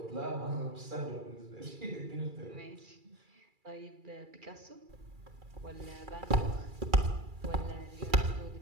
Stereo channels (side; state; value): left; late; 2.3 ms